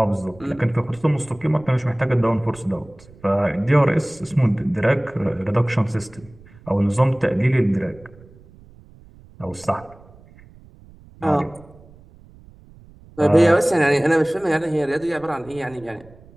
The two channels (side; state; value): right; noise; rumble, 24 dB below the sound